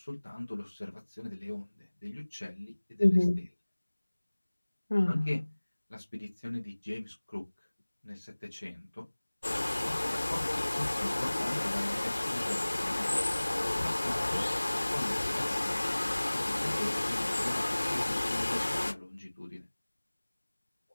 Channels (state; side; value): inverted; both; correlation -1.00